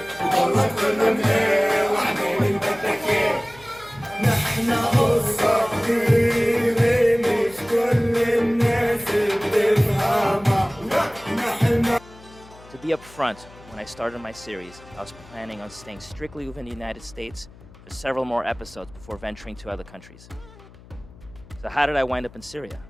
To be upfront, when I started my series, I was planning on staying strictly within the United States for several more episodes before venturing to other countries. So how did I wind up in Syria?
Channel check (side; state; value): left; noise; hum, 22 dB below the sound